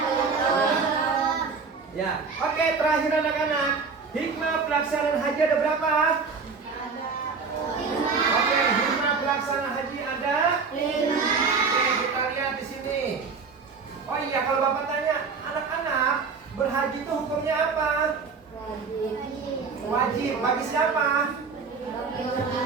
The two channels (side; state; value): left; quieter; 5.0 dB